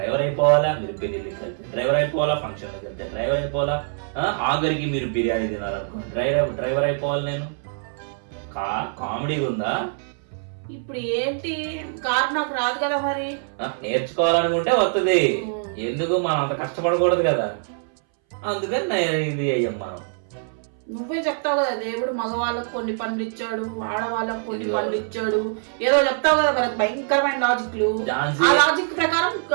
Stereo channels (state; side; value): silent; left; 61 dB below the other